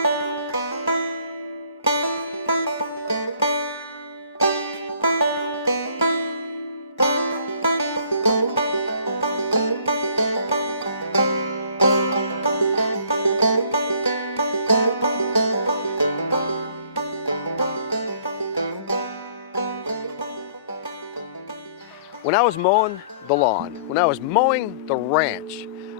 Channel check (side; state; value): both; inverted; correlation -0.55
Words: When I was mowing the lawn, when I was mowing the ranch,